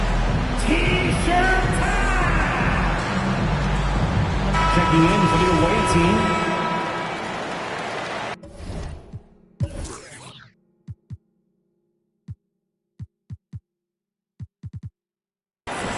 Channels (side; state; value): both; identical; correlation 1.00